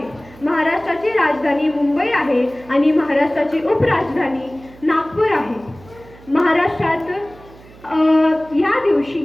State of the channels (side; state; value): right; noise; hum, 23 dB below the sound